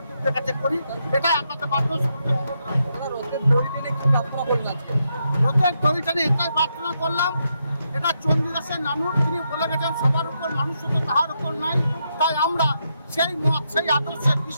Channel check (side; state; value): both; inverted; correlation -0.81